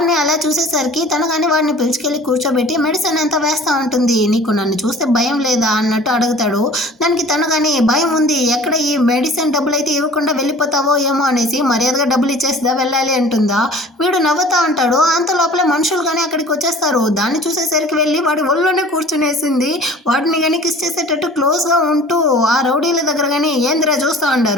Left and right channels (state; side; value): normal; both; correlation 0.45